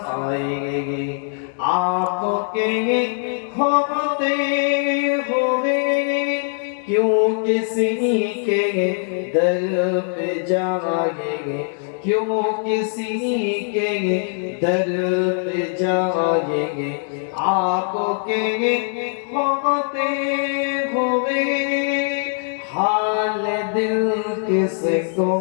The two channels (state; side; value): silent; right; 65 dB below the other